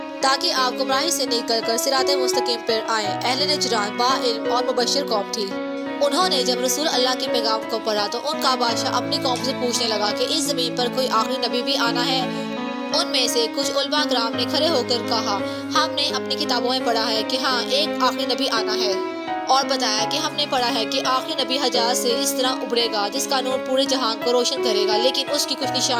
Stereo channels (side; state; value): both; identical; correlation 1.00